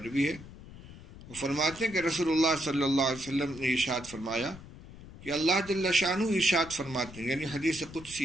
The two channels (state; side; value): noise; left; rumble, 17 dB below the sound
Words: ہے۔ وہ فرماتے ہیں کہ رسول اللہ صلی اللہ علیہ وسلم نے ارشاد فرمایا کہ اللہ جل شانہ ارشاد فرماتے ہیں، یعنی حدیث